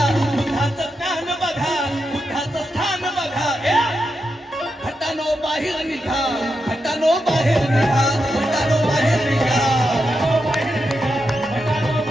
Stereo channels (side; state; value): both; normal; correlation 0.86